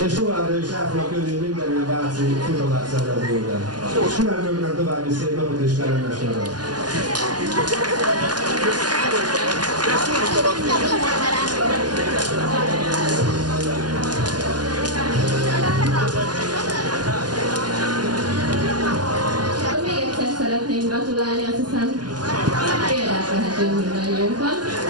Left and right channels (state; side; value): late; left; 0.70 ms